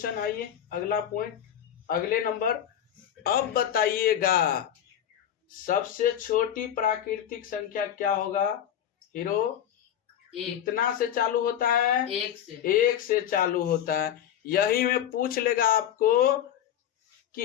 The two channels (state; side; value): quieter; right; 10.1 dB